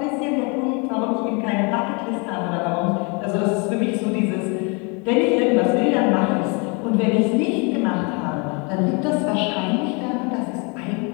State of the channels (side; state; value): right; quieter; 32.2 dB